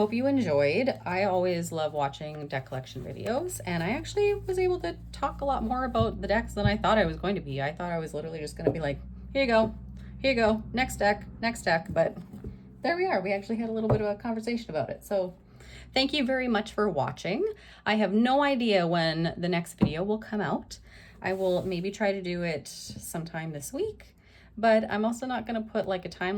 you enjoyed. I always love watching deck collection videos, and I actually was able to talk a lot more about the decks than I thought I was going to be. I thought I was literally just going to be like, here you go, next deck, but there we are. We actually had a little bit of a conversation about it. So thank you very much for watching. I have no idea when the next video will come out. I will maybe try to do it sometime this week, but I'm also not going to put like a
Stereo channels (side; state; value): both; identical; correlation 1.00